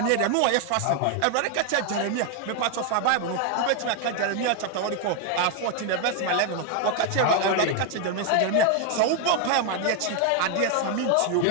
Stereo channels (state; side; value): different; both; correlation 0.01